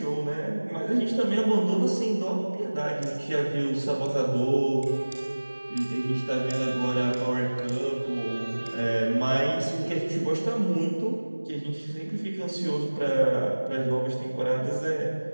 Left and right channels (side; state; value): both; inverted; correlation -1.00